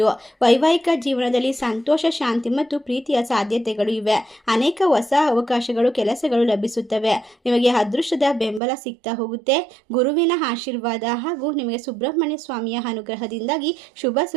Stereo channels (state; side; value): drops out; left; at 8.6 s